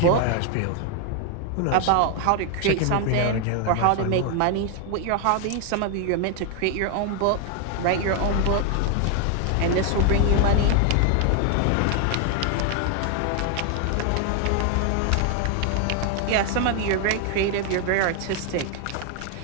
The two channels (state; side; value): different; both; correlation 0.00